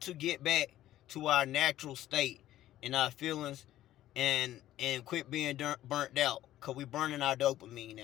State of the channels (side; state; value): right; quieter; 13.6 dB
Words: get back to our natural state and our feelings, and quit being burnt out. Because we burning our dopamine